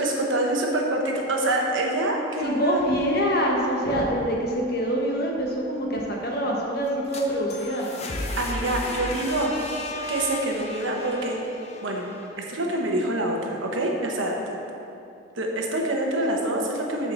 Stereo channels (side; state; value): both; normal; correlation 0.15